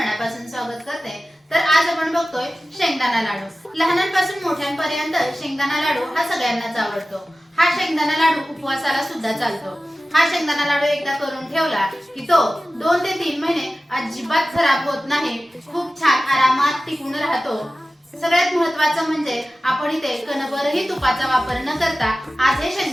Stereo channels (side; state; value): both; normal; correlation 0.96